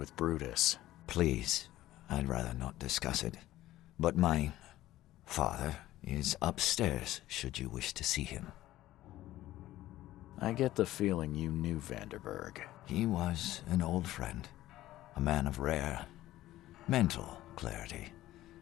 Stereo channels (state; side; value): quieter; right; 15.2 dB